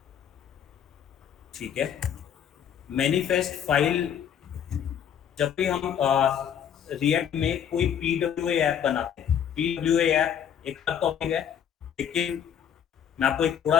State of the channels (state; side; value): quieter; right; 9.0 dB